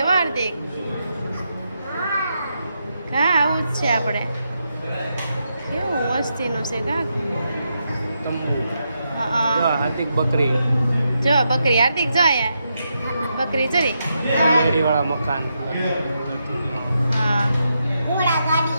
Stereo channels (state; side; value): inverted; both; correlation -0.83